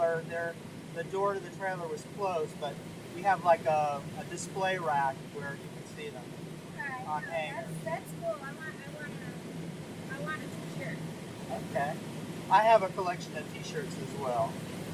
The door to the trailer was closed, but we have like a display rack where you can see them Right. on hangers. That's cool. I want a t-shirt. Okay. I have a collection of t-shirts as well.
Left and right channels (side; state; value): both; identical; correlation 1.00